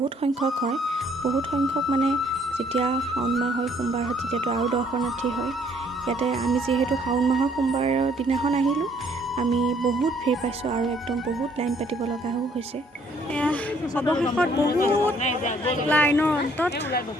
সংখ্যক হয়, বহুত সংখ্যক মানে যেতিয়া শাওণ মাহ হয় সোমবাৰ হয় তেতিয়াতো আৰু দৰ্শনাৰ্থী হয়। ইয়াতে আমি যিহেতু শাওণ মাহৰ সোমবাৰৰ দিনাখন আহিলোঁ, আমি বহুত ভিৰ পাইছোঁ আৰু একদম বহুত লাইন পাতিব লগাও হৈছে। এয়া অৱশেষত বহুত লাইনৰ অন্তত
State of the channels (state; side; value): normal; both; correlation 0.64